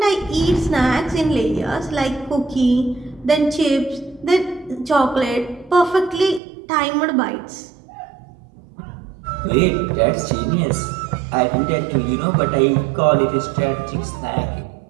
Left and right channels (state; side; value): drops out; left; at 6.4 s